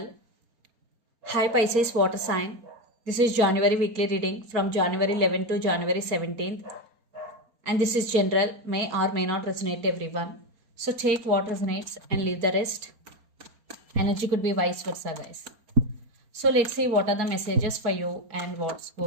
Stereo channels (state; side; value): late; left; 4.3 ms